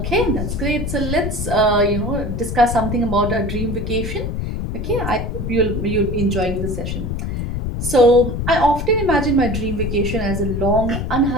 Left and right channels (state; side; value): noise; left; rumble, 3 dB below the sound